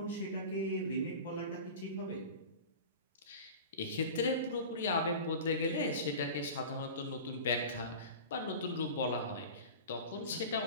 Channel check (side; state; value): both; inverted; correlation -0.34